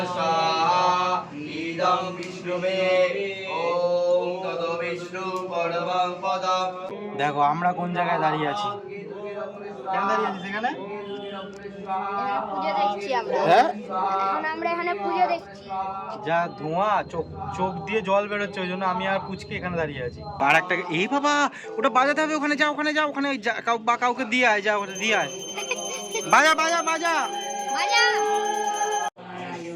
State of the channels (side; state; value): both; identical; correlation 1.00